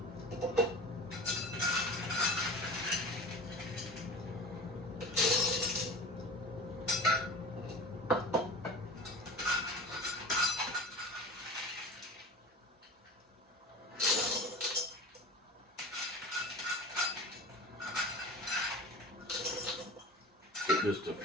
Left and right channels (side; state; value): both; normal; correlation 0.35